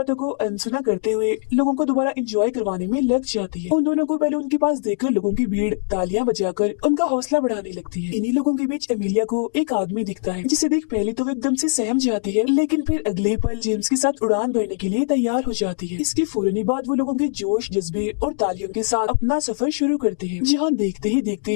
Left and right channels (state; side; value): silent; right; digital silence